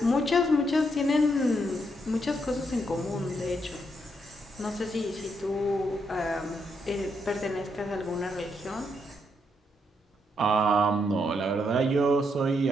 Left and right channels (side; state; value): both; normal; correlation 0.78